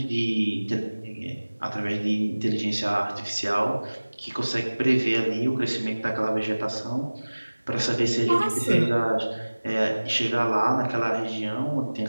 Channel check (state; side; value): inverted; both; correlation -1.00